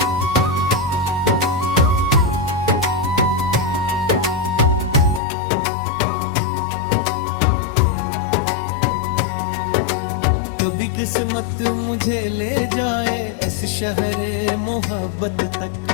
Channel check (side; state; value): right; drops out; at 5.2 s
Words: कभी किस्मत मुझे ले जाए इस शहरे मोहब्बत तक,